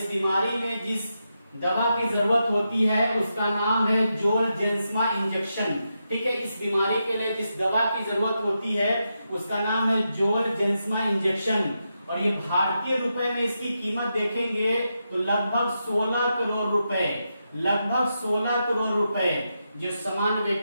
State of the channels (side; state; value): both; inverted; correlation -0.86